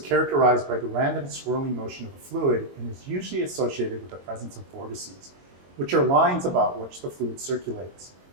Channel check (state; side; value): late; left; 22 ms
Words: characterized by the random swirling motion of a fluid and is usually associated with the presence of vortices, which are lines about which the fluid circulates.